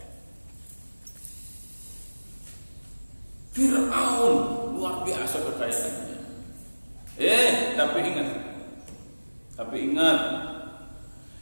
Fir'aun luar biasa kekayaannya. Tapi ingat,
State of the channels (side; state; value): both; inverted; correlation -1.00